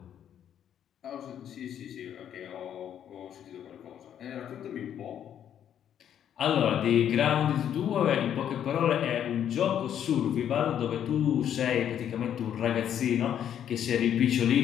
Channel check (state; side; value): quieter; right; 9.7 dB